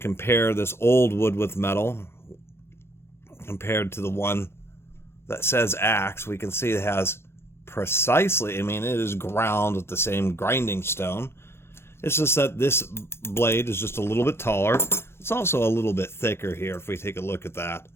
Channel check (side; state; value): right; late; 0.12 ms